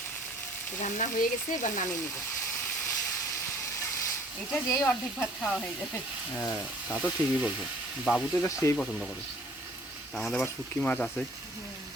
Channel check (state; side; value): normal; both; correlation 0.55